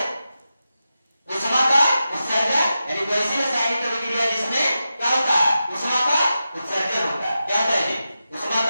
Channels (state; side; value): inverted; both; correlation -0.90